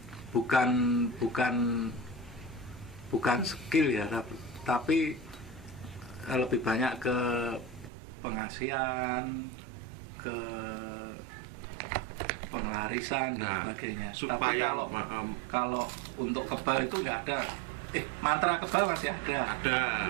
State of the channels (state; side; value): drops out; left; at 7.9 s